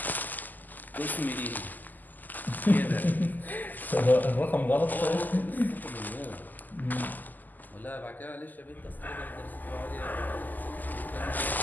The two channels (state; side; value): late; right; 0.085 ms